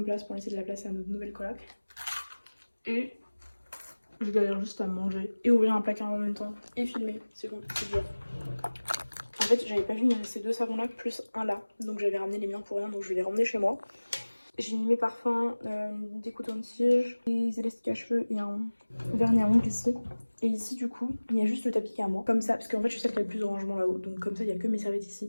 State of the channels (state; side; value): inverted; both; correlation -1.00